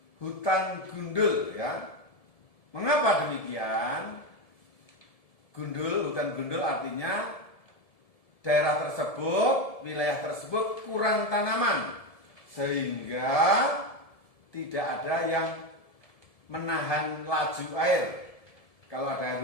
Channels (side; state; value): right; late; 1.7 ms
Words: hutan gundul, ya. Mengapa demikian? Hutan gundul artinya daerah tersebut, wilayah tersebut kurang tanaman, sehingga tidak ada yang menahan laju air. Kalau ada air